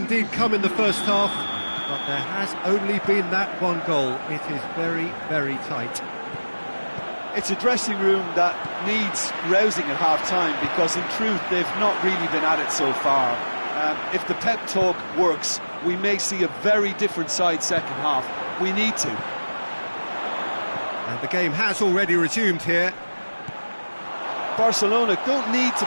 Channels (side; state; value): both; inverted; correlation -1.00